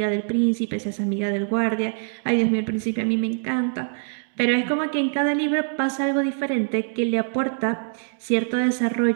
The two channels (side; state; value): left; silent; digital silence